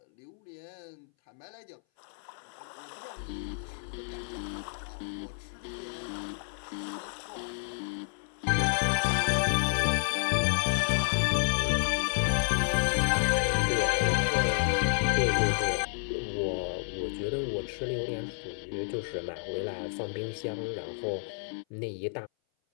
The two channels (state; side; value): silent; right; 57 dB below the other